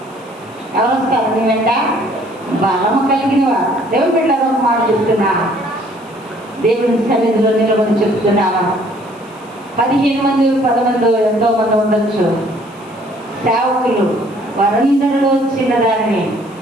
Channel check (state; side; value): noise; left; hiss, 28 dB below the sound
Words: ఎవరు వస్తారు నీ వెంట? బలము కలిగిన వారు. దేవుని బిడ్డలారా, ఒక మాట చెప్తున్నా, దేవుని సన్నిధిలో నిలబడి చెప్తున్నాను. 15 మంది 10 మంది ఎంతో మంది ఉండొచ్చు సేవకులు, వారందరిలో చిన్నదాన్ని